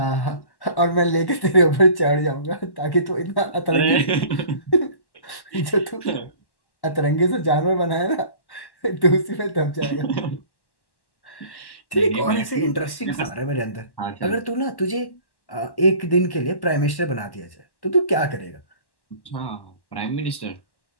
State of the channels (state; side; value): late; right; 1.1 ms